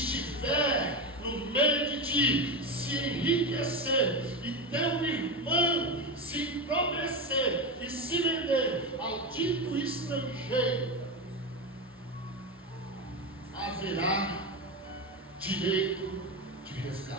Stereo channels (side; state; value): both; normal; correlation 0.17